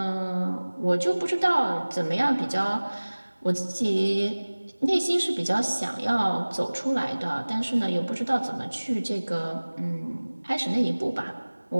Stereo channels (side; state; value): both; inverted; correlation -1.00